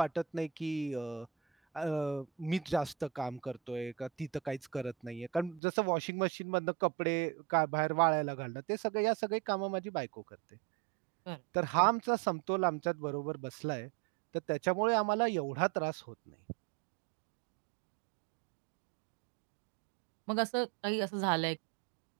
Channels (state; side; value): drops out; left; at 5.6 s